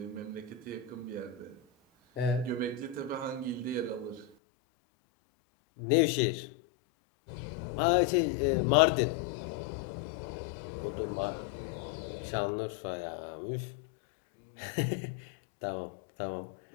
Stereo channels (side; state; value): right; drops out; at 4.3 s